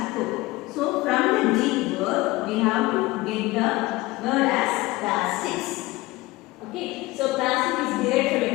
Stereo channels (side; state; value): right; quieter; 20.3 dB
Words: So from the Greek word, we have to get the word as plastics. Okay, so plastic is derived from